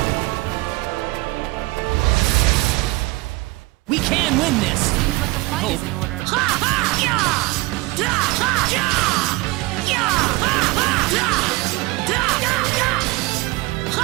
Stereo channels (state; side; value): quieter; left; 22.7 dB